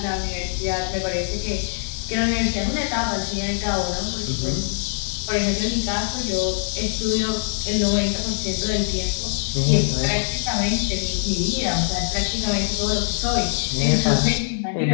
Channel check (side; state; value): right; silent; digital silence